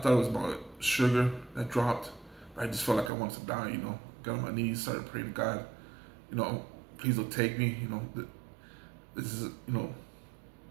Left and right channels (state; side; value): drops out; left; at 3.1 s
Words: it was about sugar that dropped. I just felt like I wanted to die, got on my knees, started praying to God, please don't take me, this is, I'm